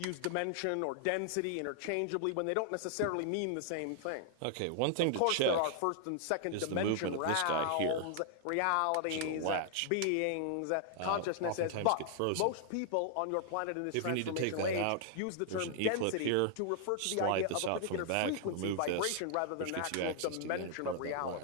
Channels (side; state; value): both; different; correlation 0.00